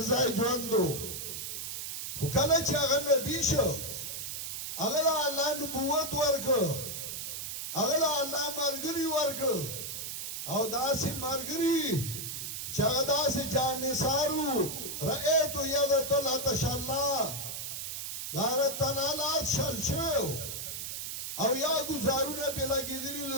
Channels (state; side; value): noise; right; hiss, 5 dB below the sound